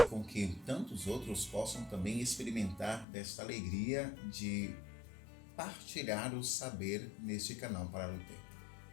com que tantos outros possam também experimentar desta alegria de partilhar o saber neste canal Parar o Tempo.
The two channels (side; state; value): right; drops out; at 3.1 s